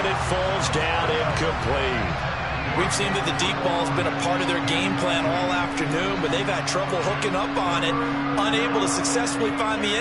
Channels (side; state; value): both; identical; correlation 1.00